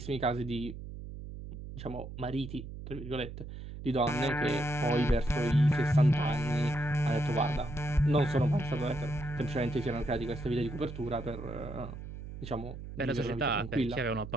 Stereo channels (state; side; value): noise; right; hum, 10 dB below the sound